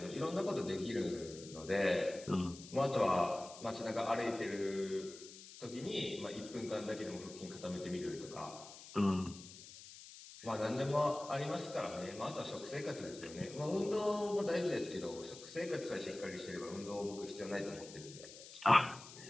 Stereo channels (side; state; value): left; noise; hiss, 16 dB below the sound